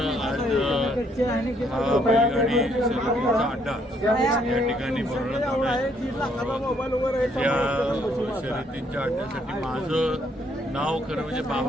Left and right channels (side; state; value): both; normal; correlation 0.69